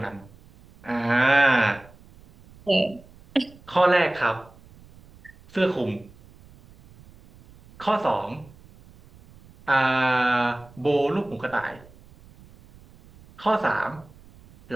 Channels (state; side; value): noise; right; rumble, 25 dB below the sound